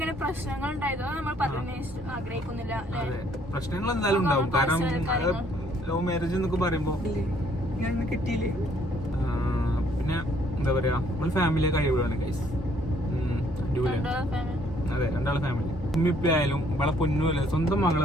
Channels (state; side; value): normal; both; correlation 0.64